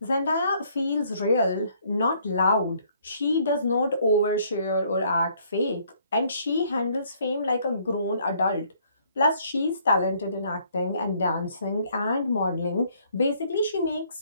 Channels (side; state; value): both; inverted; correlation -0.64